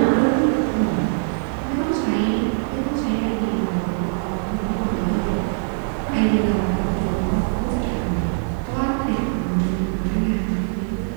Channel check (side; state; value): left; silent; digital silence